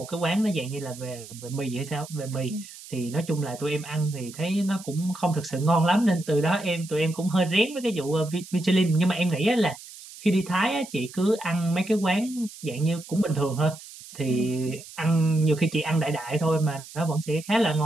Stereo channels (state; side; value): noise; right; hiss, 16 dB below the sound